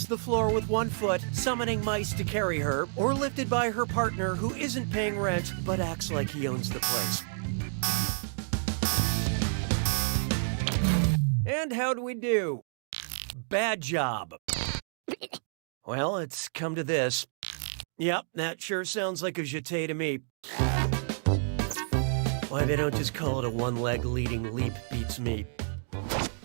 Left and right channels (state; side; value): silent; left; digital silence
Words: the floor with one foot, summoning mice to carry her, or lifted by her partner who isn't paying rent but acts like he owns the place. And how do we do? Bad job. Well, it's come to this. Yep, that sure sounds like a jeté to me. Why they don't just call it a one-leg leading leap beats me.